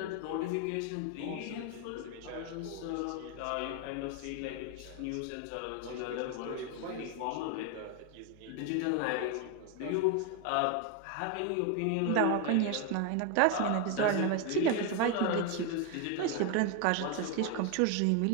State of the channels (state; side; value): different; both; correlation 0.01